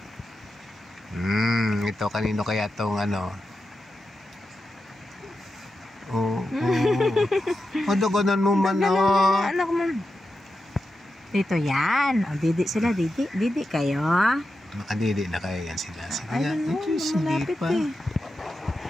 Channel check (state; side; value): normal; both; correlation 0.89